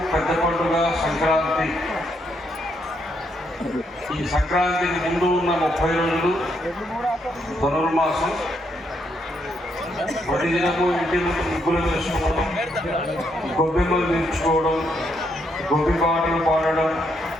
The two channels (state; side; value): normal; both; correlation 0.76